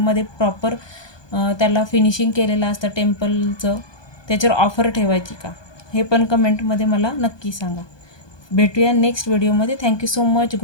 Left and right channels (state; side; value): late; right; 1.2 ms